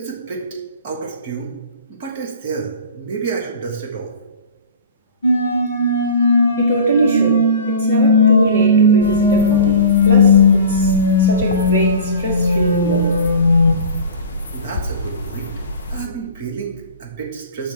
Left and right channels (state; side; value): inverted; both; correlation -0.40